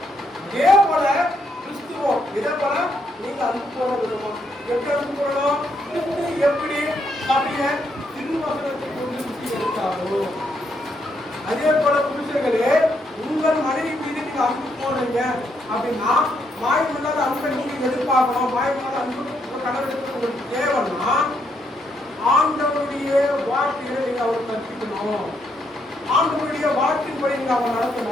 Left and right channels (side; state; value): both; normal; correlation 0.76